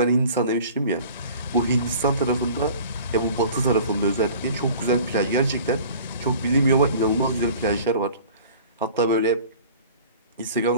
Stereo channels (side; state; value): both; inverted; correlation -0.45